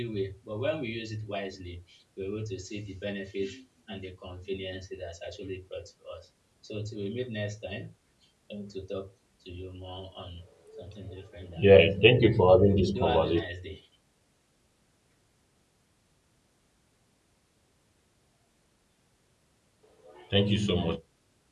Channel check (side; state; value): both; identical; correlation 1.00